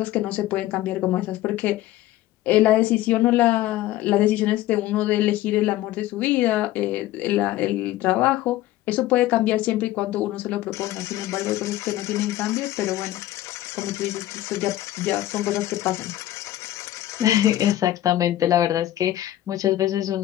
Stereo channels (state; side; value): quieter; right; 14.7 dB